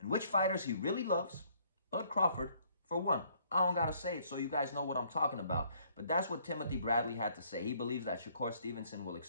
which fighters he really loves. Bud Crawford, for one. I don't gotta say it so you guys know what I'm talking about. But that's what Timothy Bradley had to say. He believes that Shakur Stevenson will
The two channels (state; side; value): inverted; both; correlation -0.64